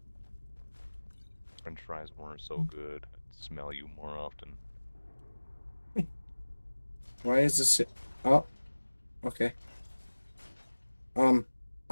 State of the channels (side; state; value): both; inverted; correlation -1.00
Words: French fries weren't so good. I'd smell you more often. Why is this? Oh, okay.